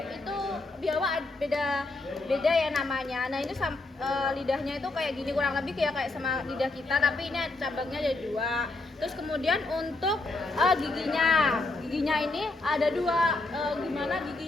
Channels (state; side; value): quieter; right; 3.1 dB